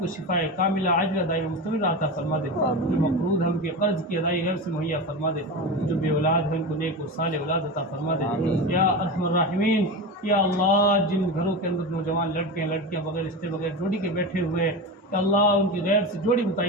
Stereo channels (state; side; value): normal; both; correlation 0.24